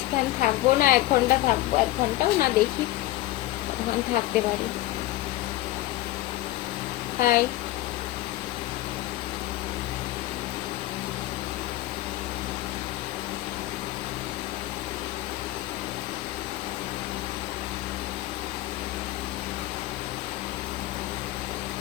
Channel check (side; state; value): right; quieter; 16.8 dB